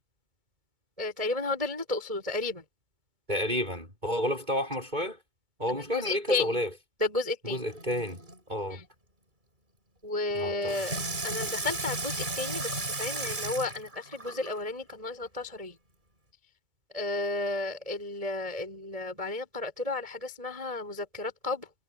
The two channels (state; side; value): late; left; 2.4 ms